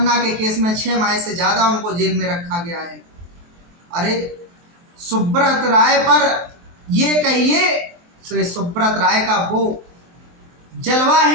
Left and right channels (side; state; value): left; late; 23 ms